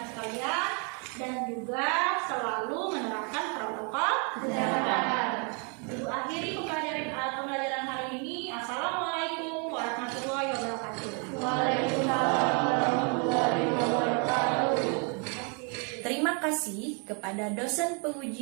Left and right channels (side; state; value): left; quieter; 36.6 dB